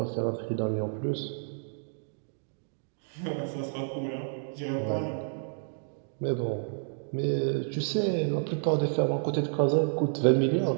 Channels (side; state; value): left; silent; digital silence